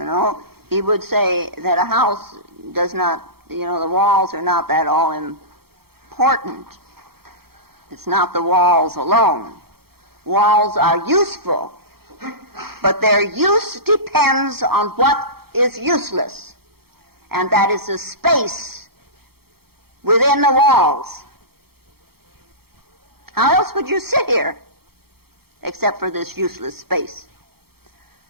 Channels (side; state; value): left; late; 0.95 ms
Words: know, he would say that a house does not, you know, the walls are not that all important. It's not the walls alone. Walls are useful, but their use depends on what is useless, and that is the space within the walls. How else would you sit here except for this useless space?